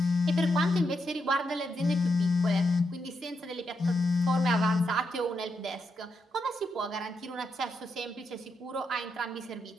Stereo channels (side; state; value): both; normal; correlation 0.83